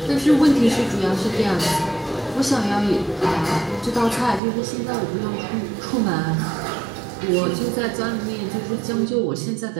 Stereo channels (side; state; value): left; drops out; at 4.4 s